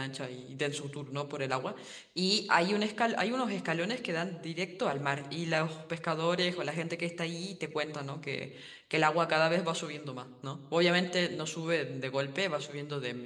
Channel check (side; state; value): both; identical; correlation 1.00